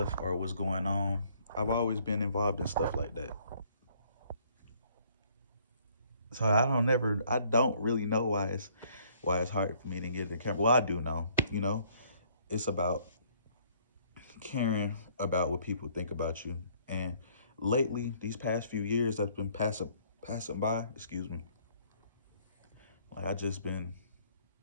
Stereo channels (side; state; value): both; inverted; correlation -0.63